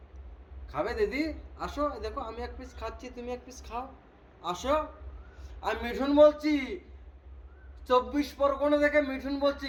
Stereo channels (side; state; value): both; identical; correlation 1.00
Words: খাবে দিদি? আসো, দেখো আমি এক পিস খাচ্ছি, তুমি এক পিস খাও, আসো। আমি মিঠুন বলছি, 24 পরগনা থেকে মিঠুন বলছি,